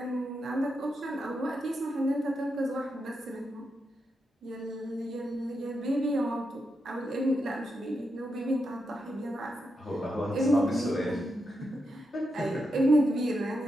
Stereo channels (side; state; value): both; normal; correlation 0.85